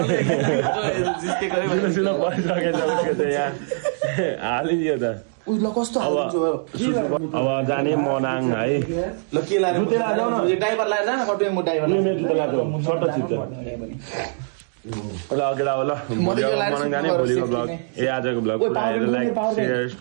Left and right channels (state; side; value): silent; left; 62 dB below the other